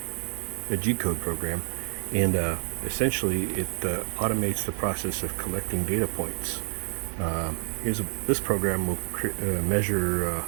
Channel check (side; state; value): left; silent; digital silence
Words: the G-code program, and essentially it automates the process of collecting data points. This program will measure